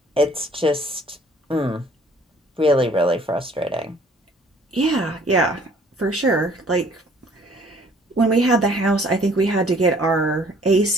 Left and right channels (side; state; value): both; normal; correlation 0.57